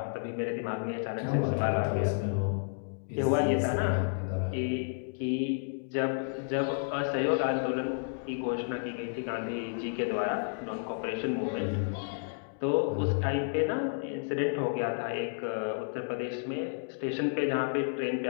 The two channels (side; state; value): right; silent; digital silence